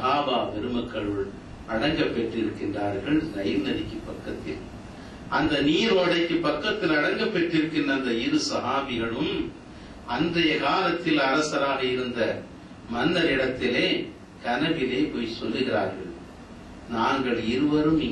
பெருமக்களுள் அடங்க பெற்றிருக்கின்றார்கள் நைல் நதிக்கு பக்கத்தில். அந்த நீரோடைக்கு பக்கத்தில் அடங்க பெற்றிருக்கின்ற அந்த 2 சஹாபிகளும் அன்றைய காலத்தில் அரசராக இருந்த மன்னர் இடத்திலே கனவிலே போய் சொல்லுகிறார்கள், நாங்கள் இருவரும்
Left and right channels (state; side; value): identical; both; correlation 1.00